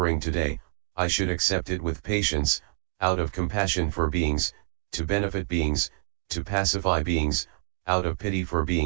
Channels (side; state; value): left; silent; digital silence